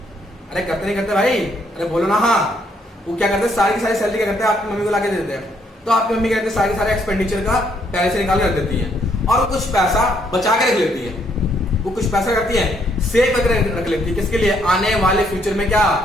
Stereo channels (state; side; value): normal; both; correlation 0.71